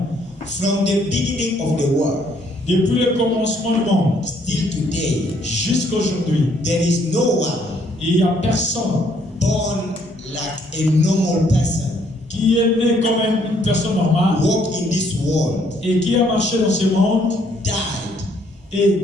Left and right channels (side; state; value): both; normal; correlation 0.67